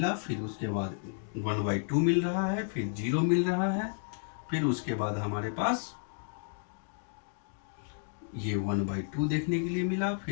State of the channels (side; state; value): right; silent; digital silence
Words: फिर उसके बाद 1/2 मिल रहा है, फिर 0 मिल रहा है, फिर उसके बाद हमारे पास ये 1/2 देखने के लिए मिला,